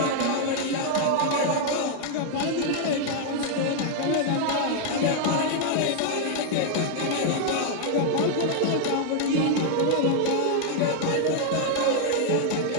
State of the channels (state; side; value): different; both; correlation 0.00